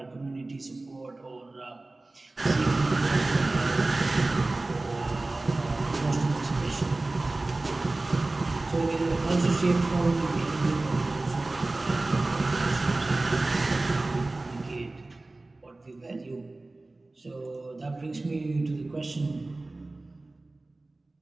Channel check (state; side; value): quieter; left; 3.0 dB